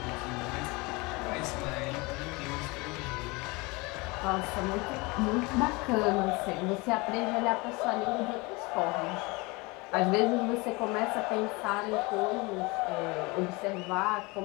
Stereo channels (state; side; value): quieter; right; 25.4 dB